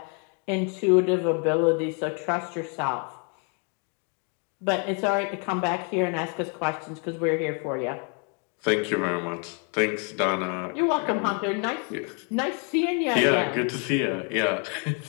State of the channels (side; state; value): right; quieter; 38.5 dB